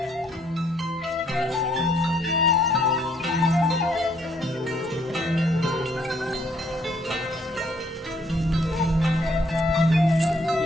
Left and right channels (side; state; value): both; normal; correlation 0.67